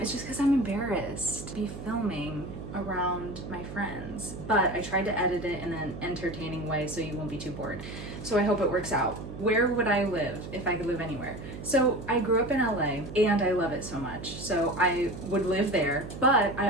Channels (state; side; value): noise; right; hum, 10 dB below the sound